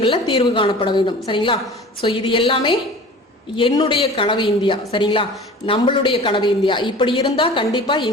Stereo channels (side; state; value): both; normal; correlation 0.41